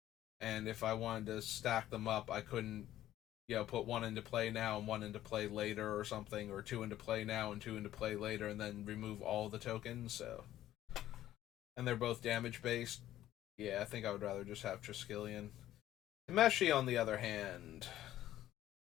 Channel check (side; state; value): right; quieter; 13.3 dB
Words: And if I wanted to stack them up, I couldn't, put one into play now and one into play later or something, or two into play now and two into play later, and then remove all the tokens. So, and they're both damage based. Yeah, I think I would rather just have Triskelion. Temeshi, on the other hand,